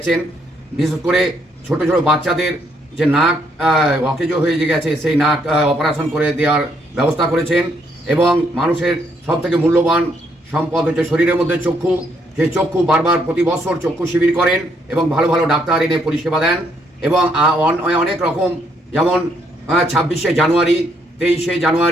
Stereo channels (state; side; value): normal; both; correlation 0.72